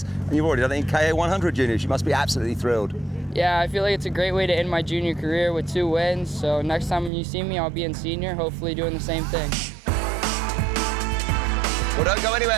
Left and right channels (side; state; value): left; drops out; at 7.1 s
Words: and you've already done it in KA100 Juniors. You must be absolutely thrilled. Yeah, I feel like it's a great way to end my junior career with 2 wins. So next time you see me, I'll be in senior, hopefully doing the same thing. Well, don't go